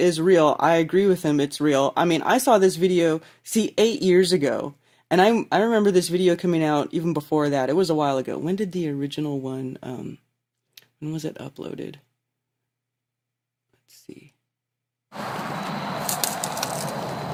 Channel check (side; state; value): both; identical; correlation 1.00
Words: real. I agree with him. It's real. I mean, I saw this video 8 years ago. And I remember this video coming out even before that. It was a while ago. When did the original one, when was it uploaded? Let's see.